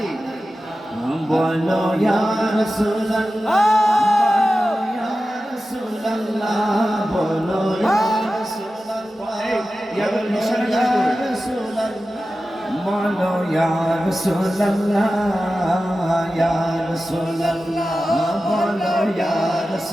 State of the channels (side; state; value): both; normal; correlation 0.94